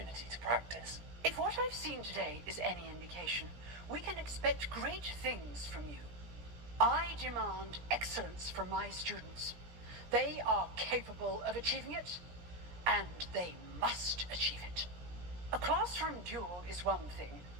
to practice. If what I've seen today is any indication, we can expect great things from you. I demand excellence from my students. They are capable of achieving it, and they must achieve it. A classroom duel is one thing,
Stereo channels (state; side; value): late; left; 17 ms